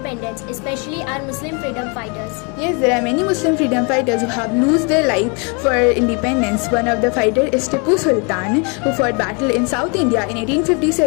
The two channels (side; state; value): right; quieter; 33.7 dB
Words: especially our Muslim freedom fighters? Yes, there are many Muslim freedom fighters who have lost their life for independence. One of the fighters is Tipu Sultan, who fought battle in South India in